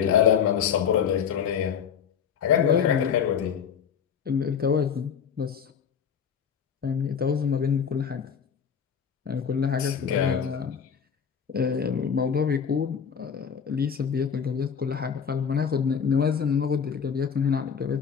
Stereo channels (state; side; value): quieter; right; 7.3 dB